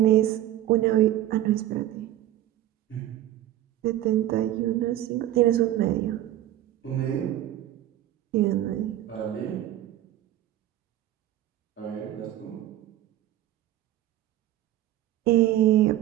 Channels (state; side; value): quieter; left; 13.4 dB